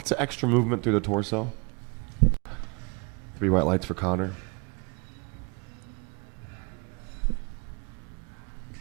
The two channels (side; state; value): left; quieter; 31.1 dB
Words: of extra movement through the torso. 3 white lights for Connor.